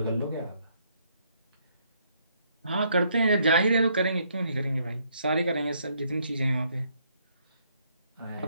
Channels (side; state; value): both; inverted; correlation -0.70